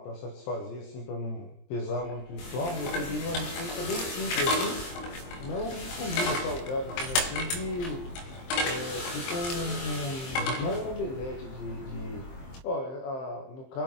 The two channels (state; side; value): late; right; 23 ms